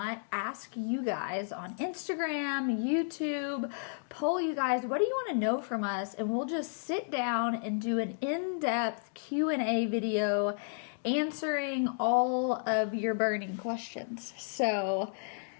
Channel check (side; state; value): right; silent; digital silence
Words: ask you guys on Instagram, YouTube, poll you guys, what do you want to know from us? And we'll just sit down and do an in-depth Q&A video answering all of your burning questions. So